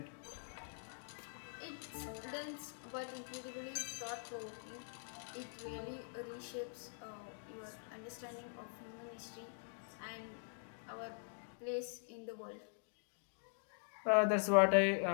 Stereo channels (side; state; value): right; silent; digital silence